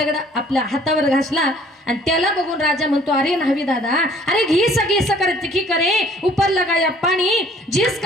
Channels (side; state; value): both; normal; correlation 0.56